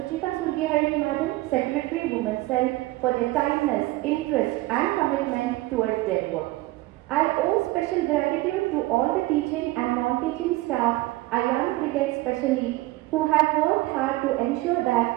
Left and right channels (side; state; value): left; quieter; 19.1 dB